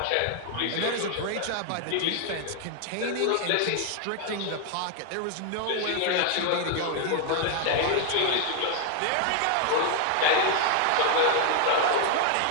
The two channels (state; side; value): different; both; correlation 0.00